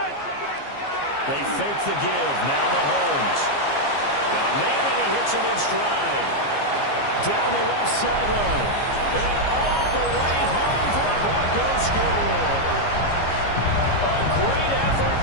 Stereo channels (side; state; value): right; late; 15 ms